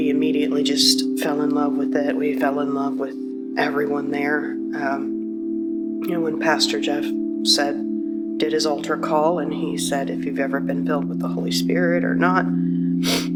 immediately just fell in love with it. We fell in love with everyone there. When Pastor Jeff did his altar call, and he said, if you've ever been filled with the Holy Spirit or not,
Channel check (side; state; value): both; identical; correlation 1.00